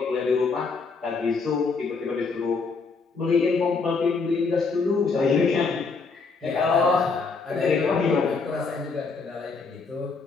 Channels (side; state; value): right; quieter; 4.6 dB